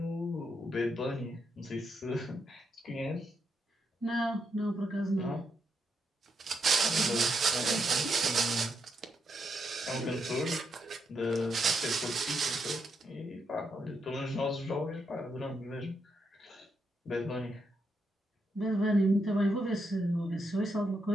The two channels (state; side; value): normal; both; correlation 0.80